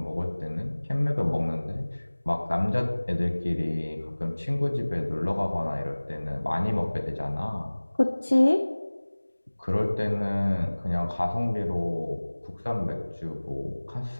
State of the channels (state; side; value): inverted; both; correlation -1.00